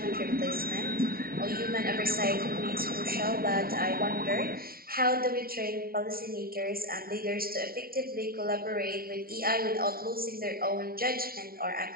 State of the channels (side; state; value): left; late; 0.43 ms